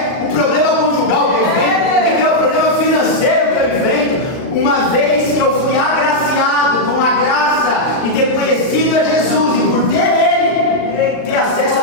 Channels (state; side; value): late; right; 38 ms